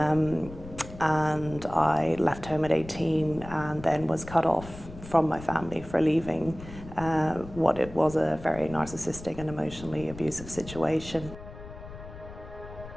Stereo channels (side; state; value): left; noise; rumble, 14 dB below the sound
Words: I left home at 18 and then was cut off from my family for leaving what it was a very narcissistic and emotionally abusive situation.